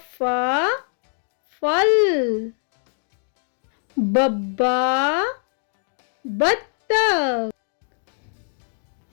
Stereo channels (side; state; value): right; silent; digital silence